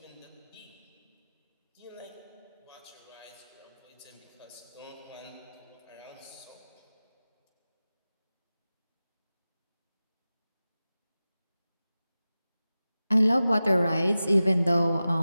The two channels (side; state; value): both; inverted; correlation -0.95